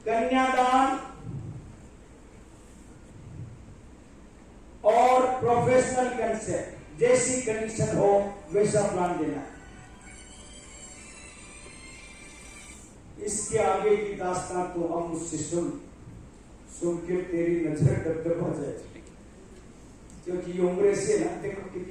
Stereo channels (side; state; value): both; identical; correlation 1.00